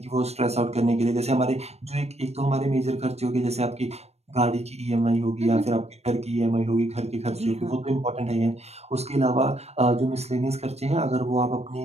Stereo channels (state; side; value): late; left; 0.31 ms